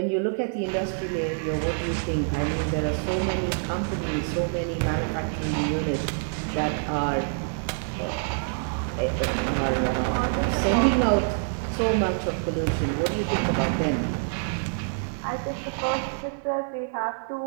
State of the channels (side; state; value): left; silent; 61 dB below the other